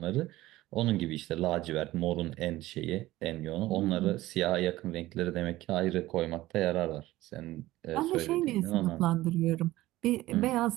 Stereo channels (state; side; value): quieter; left; 16.9 dB